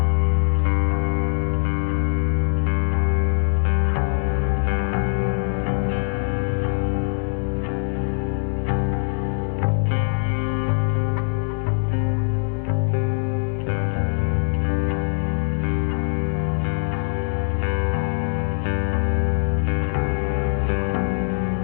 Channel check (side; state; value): right; silent; digital silence